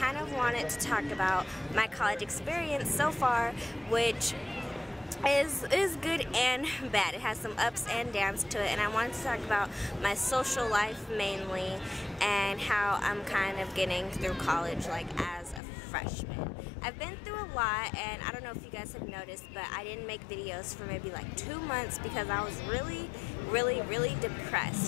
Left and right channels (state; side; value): drops out; right; at 15.6 s